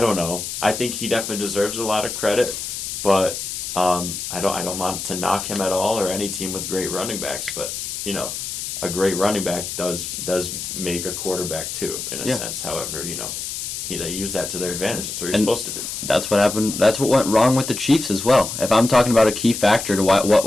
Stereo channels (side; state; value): left; noise; hiss, 6 dB below the sound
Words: don't know. I think he definitely deserves a lot of credit, but I don't want to knock him at all or any team with great running backs. But a great running back does make a quarterback too, in a sense. However, they use that to their advantage. That's what you're supposed to do. That's what happened. That's what went wrong with the Chiefs as well. If I'm talking about a key factor to what